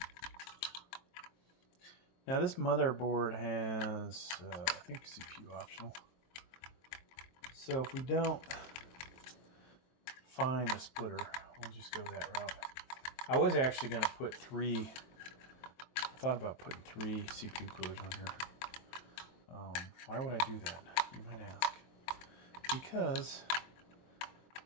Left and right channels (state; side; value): late; right; 23 ms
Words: Now this motherboard has, I think, CPU optional. So if we don't find a splitter, we'll just go that route. I was actually going to put three. I thought about putting 3 CPU coolers on here. Why would I do that? You might ask. Because